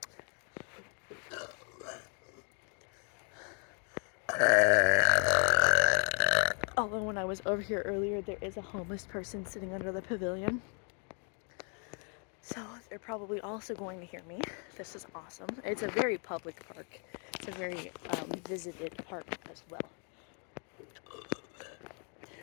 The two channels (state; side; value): quieter; right; 39.6 dB